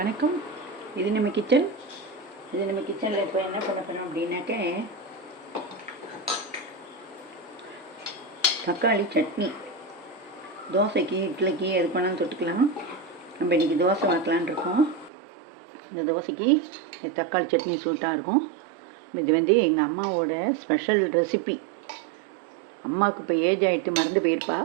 இது நம்ம கிச்சன். கிச்சனில் இப்போ என்ன பண்ண போகிறோம் அப்படின்னாக்க தக்காளி சட்னி. தோசைக்கு இட்லிக்கு எது பண்ணாலும் தொட்டுக்கலாம். நம்ம இன்றைக்கி தோசை வாக்கலான் இருக்கோம். இந்த தோசைக்கு இந்த தக்காளி சட்னி சூட்டாக இருக்கும். இது எங்கள் அம்மாவோட ஸ்பெஷல் ரெசிபி. அம்மாவுக்கு இப்போ ஏஜ் ஆகிட்டு மறந்து போயிருப்பா.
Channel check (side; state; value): left; drops out; at 15.1 s